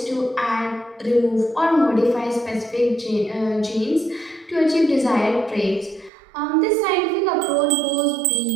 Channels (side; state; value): left; drops out; at 6.1 s